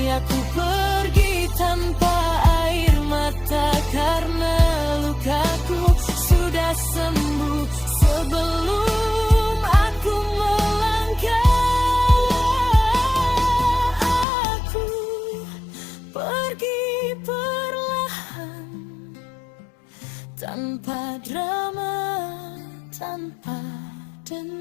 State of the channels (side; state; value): right; drops out; at 14.2 s